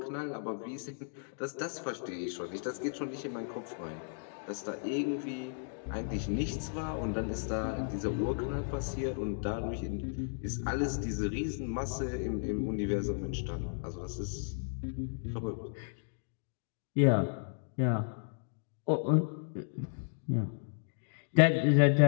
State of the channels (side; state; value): right; silent; digital silence